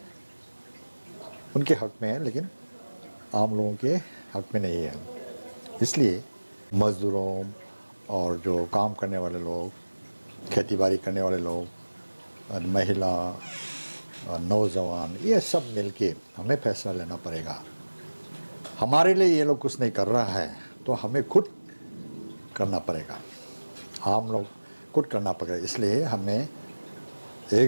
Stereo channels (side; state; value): both; inverted; correlation -1.00